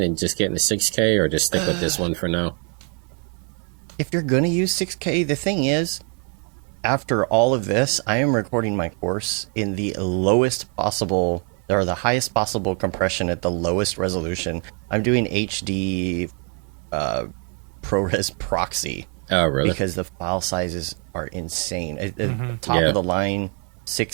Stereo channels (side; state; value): left; quieter; 39.6 dB